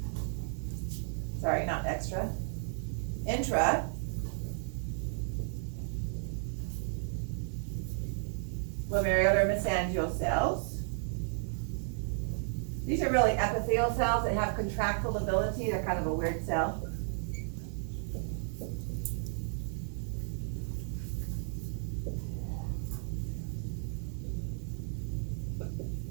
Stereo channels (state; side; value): silent; left; digital silence